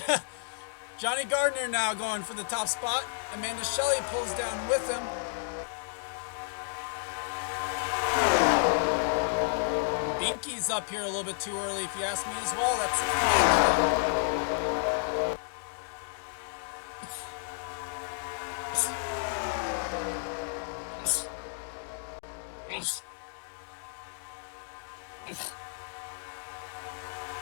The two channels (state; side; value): silent; right; digital silence